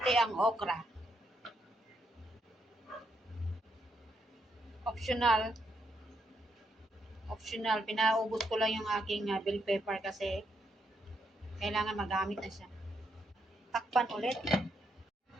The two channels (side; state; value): both; normal; correlation 0.78